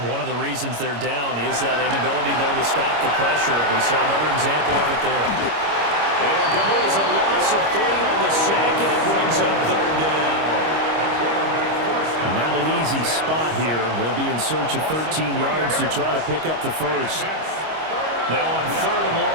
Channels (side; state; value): left; late; 25 ms